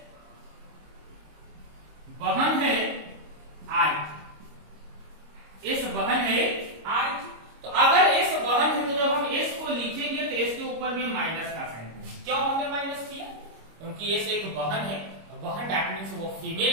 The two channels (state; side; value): late; left; 26 ms